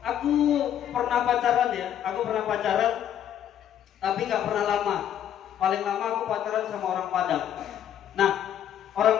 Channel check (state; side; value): quieter; right; 10.2 dB